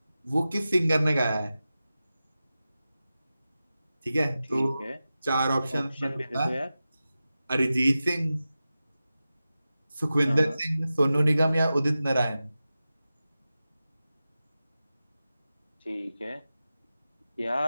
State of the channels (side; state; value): both; inverted; correlation -0.94